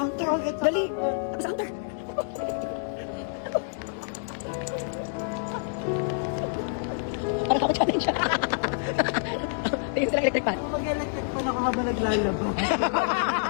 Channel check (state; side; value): silent; right; digital silence